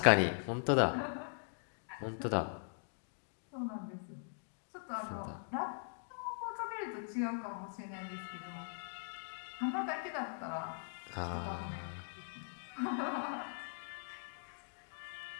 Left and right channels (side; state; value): right; silent; digital silence